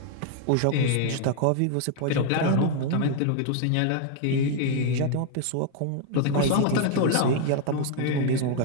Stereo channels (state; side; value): different; both; correlation 0.00